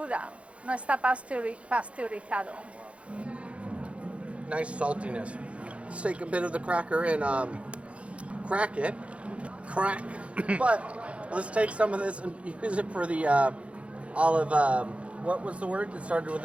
no está pasteurizado. Nice saltiness. Let's take a bit of the cracker and crack it. Crack. But let's take some of this and use it for the olive. What was the word that started with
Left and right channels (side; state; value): left; late; 0.062 ms